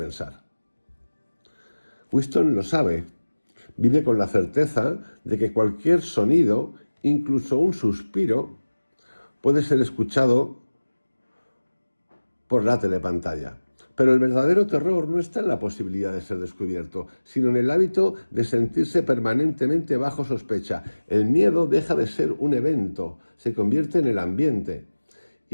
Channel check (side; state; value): both; inverted; correlation -1.00